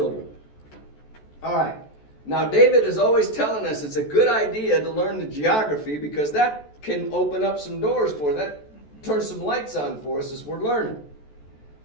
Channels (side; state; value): right; late; 14 ms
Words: All right. Now, David is always telling us it's a good idea to learn the geography because that can open up some doors for us. That turns some lights on for us as we're learning.